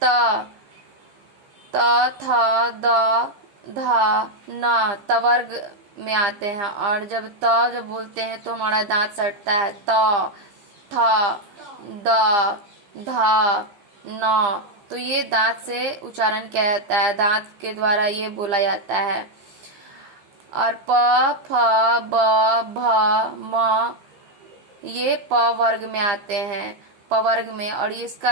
त, थ, द, ध, न तवर्ग में आते हैं। और जब जब बोलते हैं तो हमारा दांत सटता है। त, थ, द, ध, न, तो ये दांत से उच्चारण किया जाता है। दांत के द्वारा ये बोला जाता है। और प, फ, ब, भ, म, ये प वर्ग में आते हैं। प वर्ग में। और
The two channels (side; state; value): left; late; 15 ms